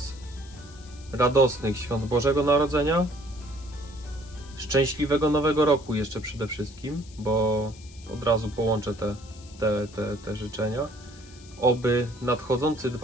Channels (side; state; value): left; noise; hiss, 22 dB below the sound